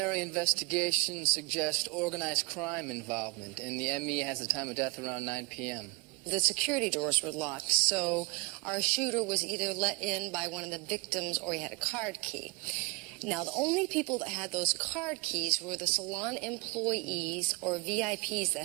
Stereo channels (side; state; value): left; quieter; 27.3 dB